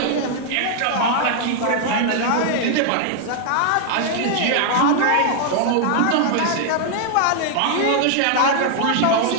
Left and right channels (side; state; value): both; different; correlation 0.00